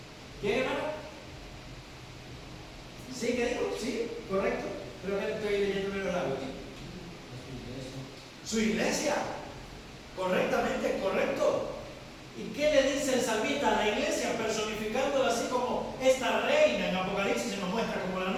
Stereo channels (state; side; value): identical; both; correlation 1.00